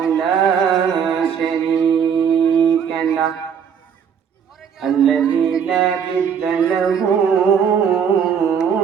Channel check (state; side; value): quieter; left; 7.4 dB